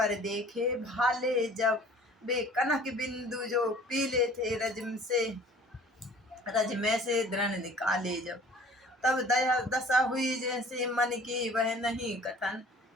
देखे भाले, जब वे कनक बिंदु जो पीले थे रज में से दृढ़ निकाले जब। तब दया दशा हुई जैसे मन की वह नहीं कथन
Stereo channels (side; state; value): both; normal; correlation 0.50